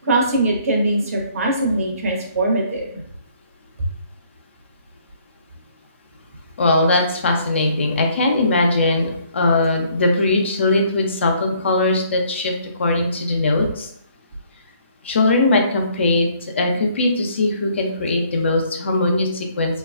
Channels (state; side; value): inverted; both; correlation -0.63